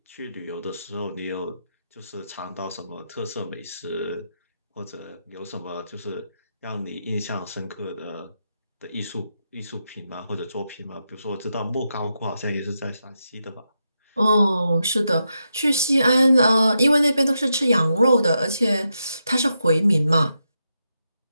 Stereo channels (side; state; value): both; inverted; correlation -0.85